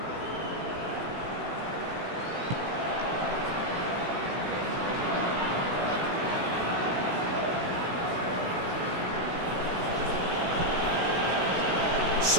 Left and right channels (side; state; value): left; late; 16 ms